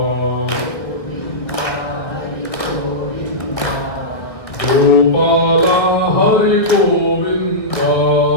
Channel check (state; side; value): late; right; 1.8 ms